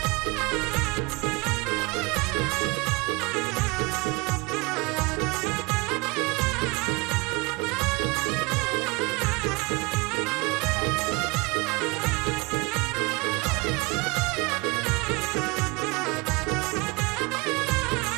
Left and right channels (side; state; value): left; quieter; 26.0 dB